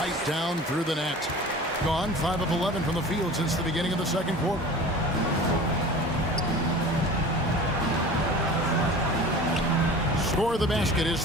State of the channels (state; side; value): normal; both; correlation 0.39